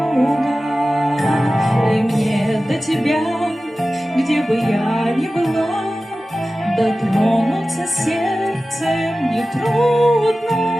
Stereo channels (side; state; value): both; normal; correlation 0.95